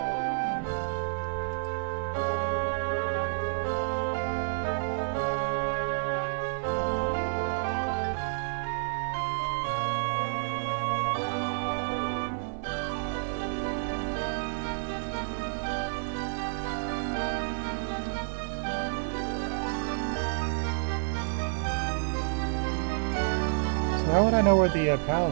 How would I know where the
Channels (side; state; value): left; silent; 58 dB below the other